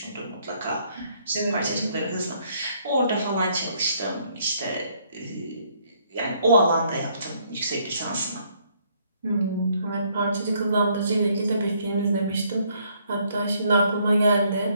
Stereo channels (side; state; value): both; inverted; correlation -0.68